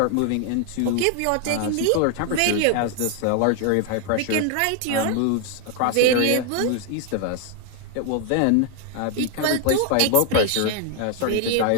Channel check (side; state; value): both; different; correlation 0.01